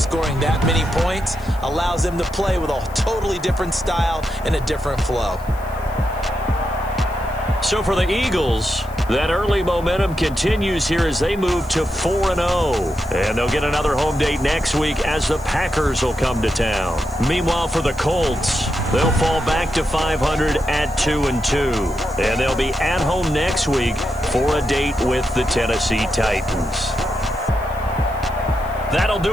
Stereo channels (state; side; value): noise; left; hiss, 24 dB below the sound